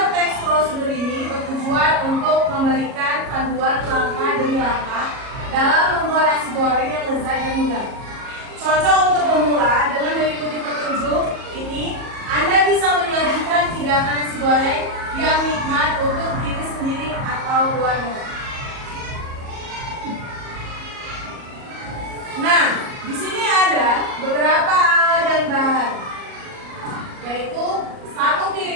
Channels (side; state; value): left; late; 37 ms